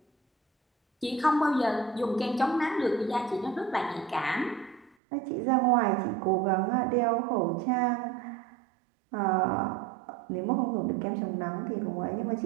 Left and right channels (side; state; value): left; drops out; at 4.9 s